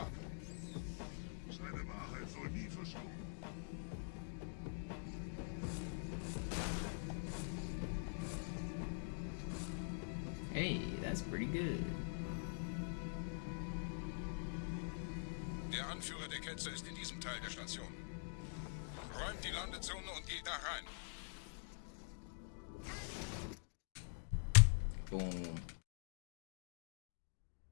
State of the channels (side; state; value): right; silent; digital silence